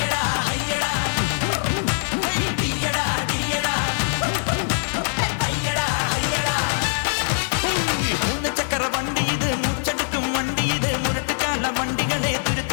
വണ്ടി ഇത്, മൂച്ചെടുക്കും വണ്ടി ഇത്, മുരട്ടുകാല വണ്ടികളെ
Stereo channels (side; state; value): right; silent; 64 dB below the other